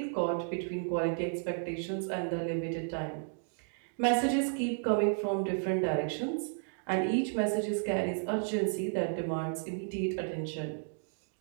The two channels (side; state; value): left; silent; digital silence